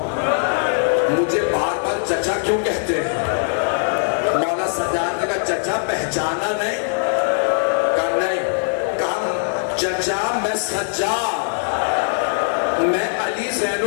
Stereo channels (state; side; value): silent; right; 58 dB below the other